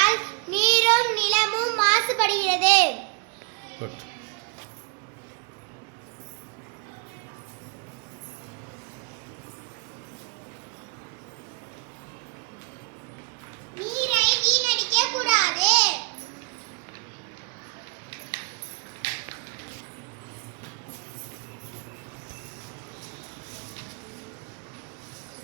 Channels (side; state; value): left; quieter; 35.7 dB